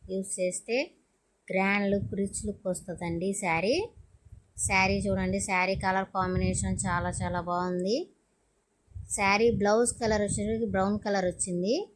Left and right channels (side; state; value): both; identical; correlation 1.00